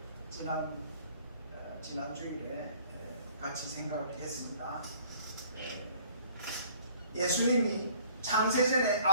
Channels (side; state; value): both; inverted; correlation -0.57